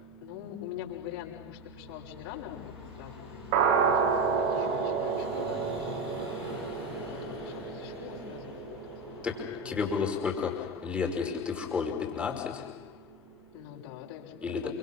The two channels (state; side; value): normal; both; correlation 0.20